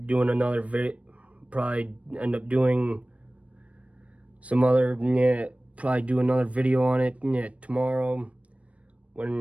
doing another probably do another video on it tomorrow,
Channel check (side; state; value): left; late; 0.064 ms